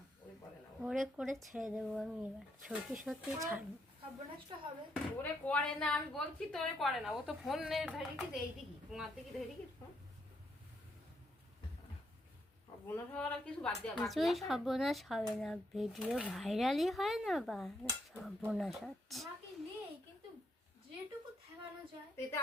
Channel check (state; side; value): normal; both; correlation 0.76